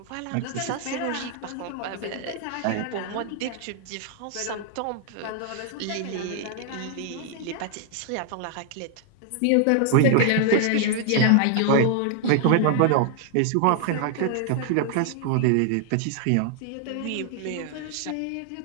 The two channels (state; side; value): different; both; correlation 0.00